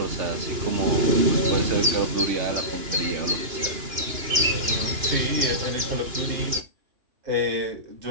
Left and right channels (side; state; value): left; late; 2.9 ms